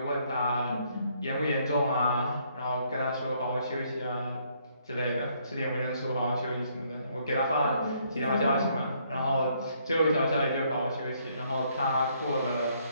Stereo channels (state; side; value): inverted; both; correlation -0.68